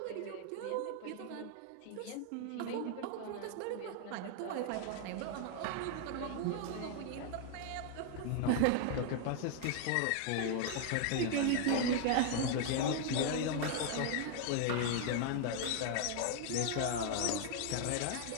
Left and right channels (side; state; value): both; different; correlation 0.00